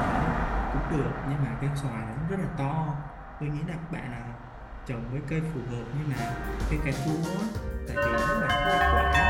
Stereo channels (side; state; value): both; identical; correlation 1.00